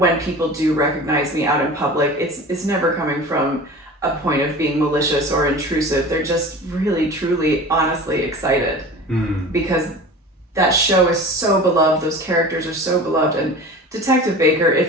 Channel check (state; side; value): normal; both; correlation 0.38